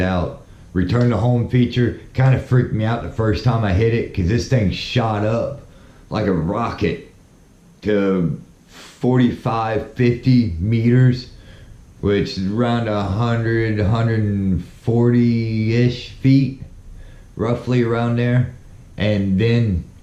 Return to home feature kind of freaked me out the first time I hit it, because this thing shot up like a rocket to 45, 50 meters, which is around 100, 140-ish feet, roughly around there, and then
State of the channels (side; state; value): both; identical; correlation 1.00